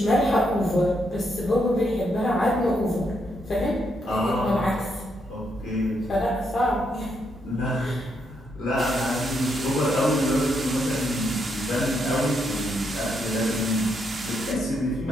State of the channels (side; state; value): both; normal; correlation 0.78